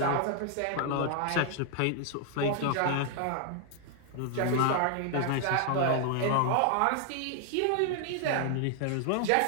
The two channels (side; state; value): both; different; correlation 0.00